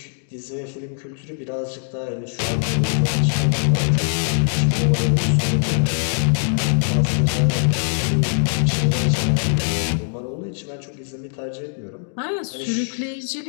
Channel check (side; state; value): right; silent; digital silence